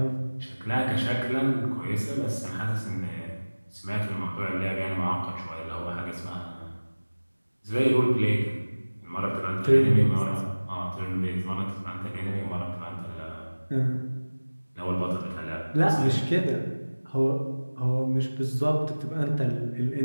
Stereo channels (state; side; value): inverted; both; correlation -1.00